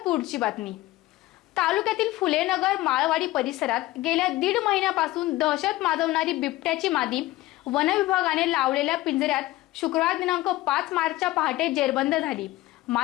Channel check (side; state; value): right; quieter; 17.6 dB